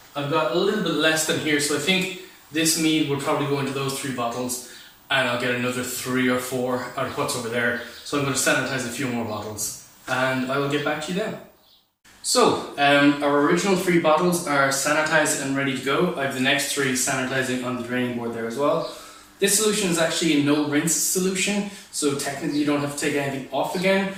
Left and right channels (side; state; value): both; identical; correlation 1.00